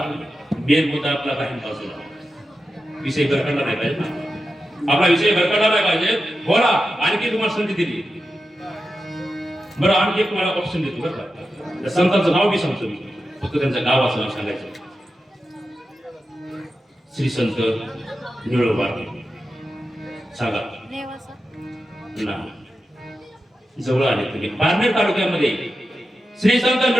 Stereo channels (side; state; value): both; normal; correlation 0.90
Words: मेन मुद्दा आपला काही बाजूला विषय भरकडला नाही पाहिजे ना आपला विषय भरकडला नाही पाहिजे बोला आणखी तुम्हाला संधी दिली बरं आणखी एक तुम्हाला ऑप्शन देतो बरं का त्या संतांचं नाव बी सांगतो मी फक्त त्यांचं गावाचं नाव सांगायचं श्री संत निळोबा सांगा ना जवळ आले तुम्ही पारनेर तालुक्यामध्ये श्री संत